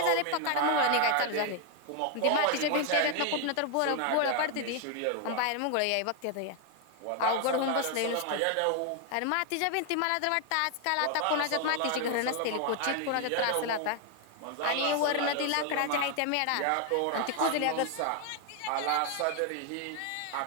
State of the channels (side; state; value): both; different; correlation 0.00